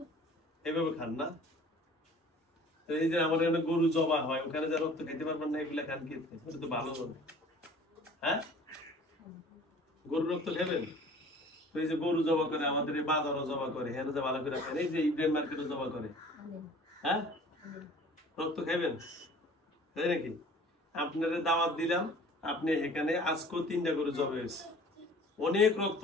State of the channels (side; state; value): both; normal; correlation 0.48